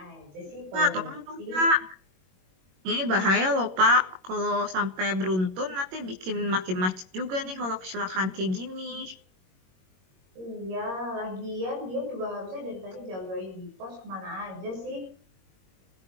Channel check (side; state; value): left; late; 21 ms